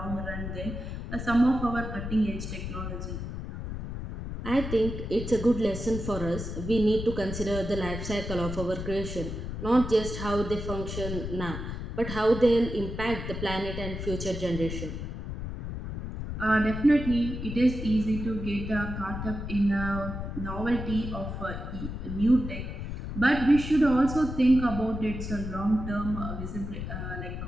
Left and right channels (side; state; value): left; noise; rumble, 6 dB below the sound